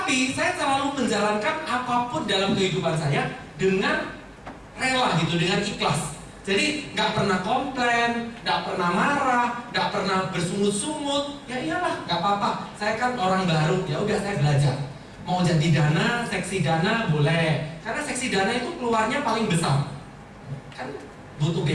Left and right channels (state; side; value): identical; both; correlation 1.00